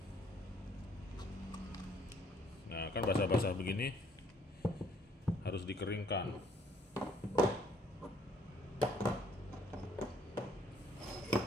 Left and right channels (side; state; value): both; normal; correlation 0.64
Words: Nah, kan basah-basah begini harus dikeringkan.